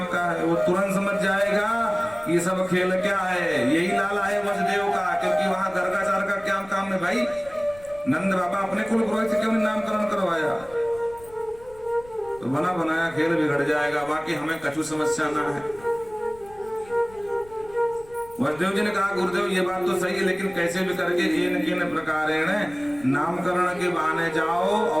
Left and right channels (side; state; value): left; noise; rumble, 23 dB below the sound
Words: का है, वो तुरंत समझ जाएगा कि ये सब खेल क्या है, यही लाला है वसुदेव का, क्योंकि वहां गर्गाचार का क्या काम है भाई। नंद बाबा अपने कुल पुरोहित से क्यों नहीं नामकरण करवाया, तो बना बनाया खेल बिगड़ जाएगा। बाकी हमें कछु समस्या ना है। वसुदेव जी ने कहा गुरुदेव ये बात तो सही है, लेकिन कैसे भी करके इन प्रकारेण नामकरण के बहाने जाओ